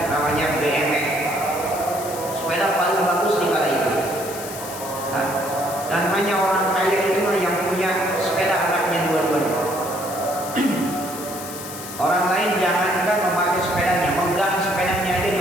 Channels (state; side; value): noise; left; hiss, 11 dB below the sound